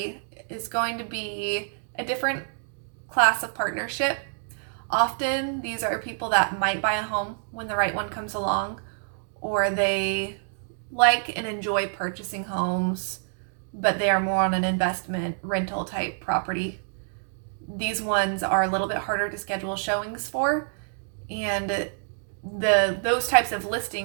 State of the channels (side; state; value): left; silent; digital silence